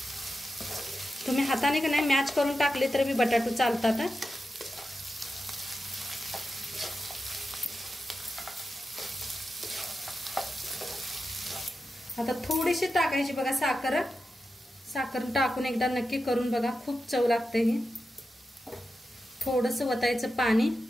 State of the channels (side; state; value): both; normal; correlation 0.90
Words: तुम्ही हाताने का नाही मॅच करून टाकले तर बी बटाटो चालतात. आता थोडीशी टाकायची बघा साखर. साखर टाकून एकदा नक्की करून बघा, खूप चव लागते ही. थोडंसं वतायचं पाणी,